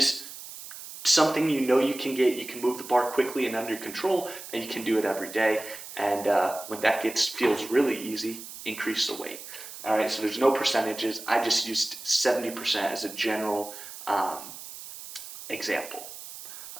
something you can get. You can move the bar quickly and under control, and you can do it every day. And when that feels really easy, increase the weight. All right, so there's no percentages. I just used 70% as a general example.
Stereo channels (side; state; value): right; noise; hiss, 13 dB below the sound